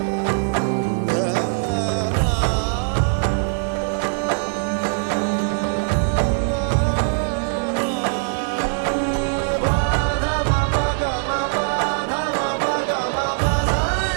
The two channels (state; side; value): silent; left; digital silence